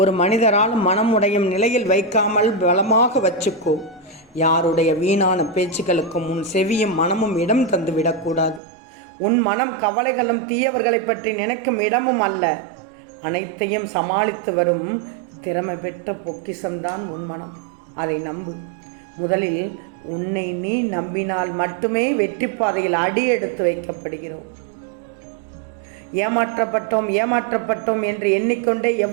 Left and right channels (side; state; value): left; drops out; at 8.6 s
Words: மனிதராலும் மனம் உடையும் நிலையில் வைக்காமல் பலமாக வச்சுக்கோ. யாருடைய வீணான பேச்சுக்களுக்கும் உன் செவியும் மனமும் இடம் தந்து விடக்கூடாது. உன் மனம் கவலைகளும் தீயவர்களை பற்றி நினைக்கும் இடமும் அல்ல. அனைத்தையும் சமாளித்து வரும் திறமை பெற்ற பொக்கிஷம்தான் உன் மனம். அதை நம்பு. முதலில் உன்னை நீ நம்பினால் மட்டுமே வெற்றி பாதையில் அடி எடுத்து வைக்கப்படுகிறோம். ஏமாற்றப்பட்டோம் என்று எண்ணிக்கொண்டே